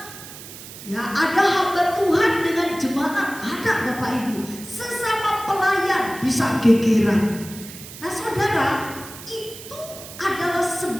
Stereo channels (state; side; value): noise; right; hiss, 14 dB below the sound